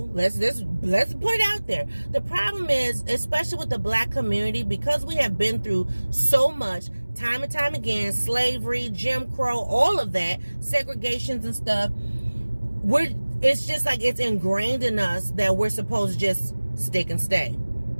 let's put it out there. The problem is, especially with the black community, because we have been through so much, time and time again, slavery, Jim Crow, all of that, segregations and stuff, it's just like it's ingrained in us that we're supposed to just stick and stay.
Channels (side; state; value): both; inverted; correlation -1.00